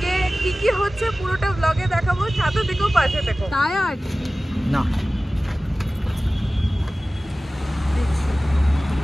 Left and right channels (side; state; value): both; normal; correlation 0.97